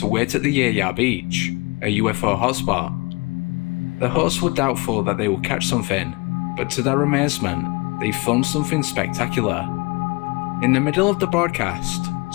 wait at the Yaya Beach, a UFO hotspot. The hosts were doubtful that they would catch something, but to their amazement, they filmed something spectacular. In the middle of the broadcast,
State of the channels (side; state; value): right; quieter; 26.8 dB